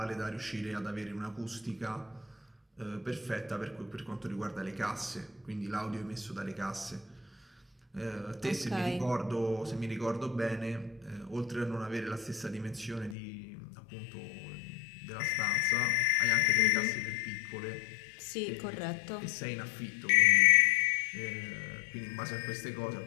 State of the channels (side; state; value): right; drops out; at 13.2 s